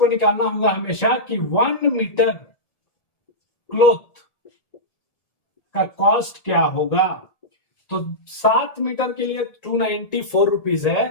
निकालना होगा हमेशा कि 1 मीटर क्लॉथ का कॉस्ट क्या होगा। तो 7 मीटर के लिए 294 रुपीज है,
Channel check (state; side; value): late; right; 1.7 ms